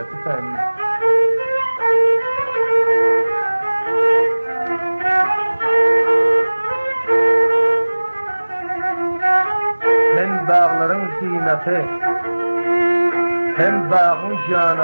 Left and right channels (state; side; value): inverted; both; correlation -1.00